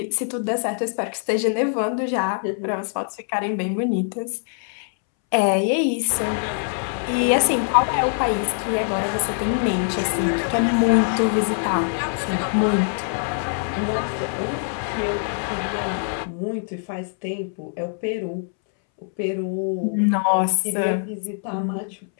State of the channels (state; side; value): silent; right; 63 dB below the other